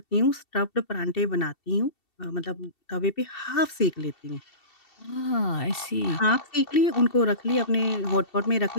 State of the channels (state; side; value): late; right; 2.7 ms